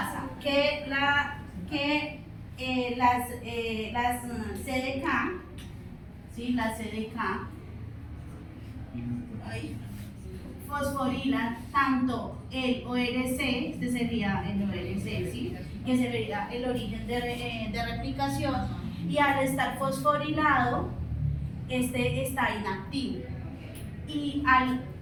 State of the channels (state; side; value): identical; both; correlation 1.00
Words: Que las CDK, ¿sí? Las CDK fosforilan tanto el ORC, este sería el ORC, ¿sí? Que sería el origen de replicación, y al estar fosforilado, este está inactivo. Y al